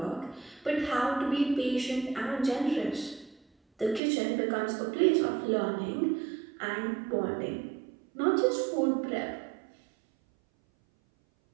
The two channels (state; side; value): drops out; left; at 4.0 s